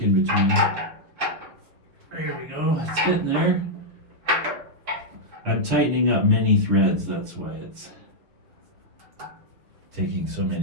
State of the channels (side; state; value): left; late; 6.1 ms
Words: in between. There we go, it's getting there. I'm tightening up many threads, that's why it's taking so